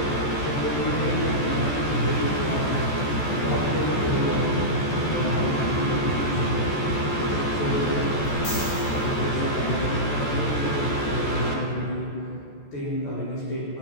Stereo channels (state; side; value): late; right; 14 ms